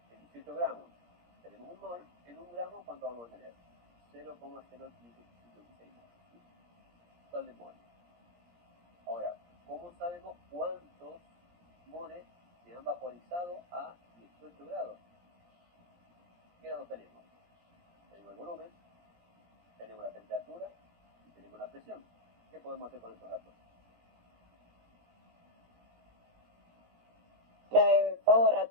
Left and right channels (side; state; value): left; late; 17 ms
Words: En 18 gramos tenemos 1 mol, en 1 gramo ¿cuánto vamos a tener? 0,056 moles. ¿Sí? Total de moles. Ahora, ¿cómo sabemos cuántos moles se han vaporizado a 18 grados? ¿Qué datos tenemos? Tenemos el volumen, tenemos la temperatura y tenemos la presión. ¿Qué podemos hacer con estos datos? La de pavo